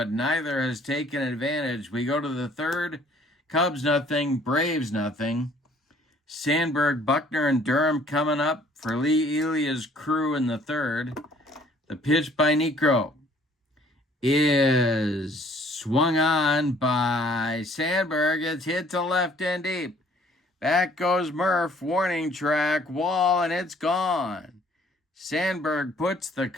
neither has taken advantage. We go to the third. Cubs nothing, Braves nothing. Sandberg, Buckner, and Durham coming up for Lee Elia's crew in the third. The pitch by Niekro is swung on by Sandberg. It's hit to left and deep. Back goes Murph, warning track, wall, and it's gone. Sandberg puts the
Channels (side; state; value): both; normal; correlation 0.59